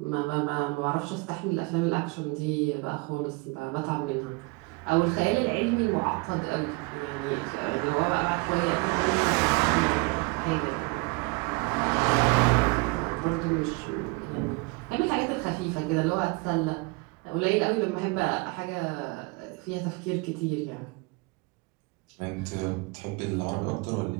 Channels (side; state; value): left; quieter; 26.9 dB